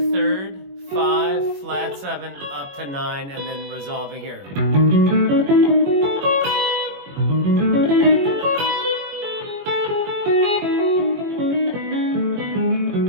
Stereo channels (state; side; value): late; left; 21 ms